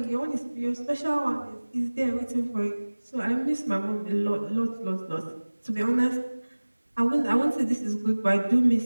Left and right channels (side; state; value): both; inverted; correlation -1.00